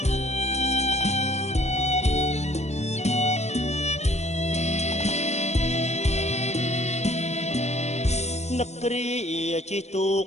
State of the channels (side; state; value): right; late; 0.32 ms